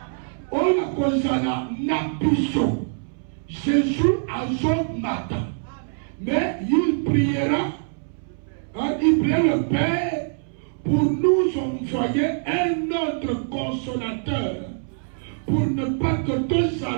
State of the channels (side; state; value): left; silent; 63 dB below the other